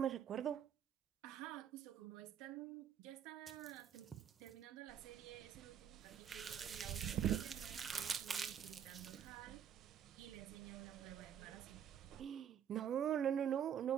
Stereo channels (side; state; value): left; quieter; 8.9 dB